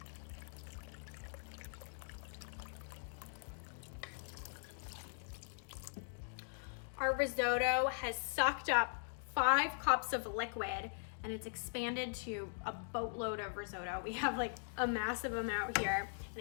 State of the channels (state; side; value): silent; right; digital silence